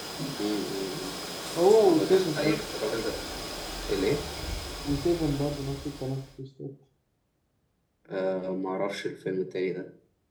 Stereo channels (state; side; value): identical; both; correlation 1.00